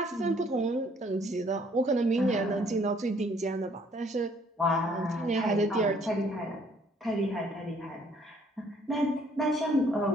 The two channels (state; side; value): normal; both; correlation 0.63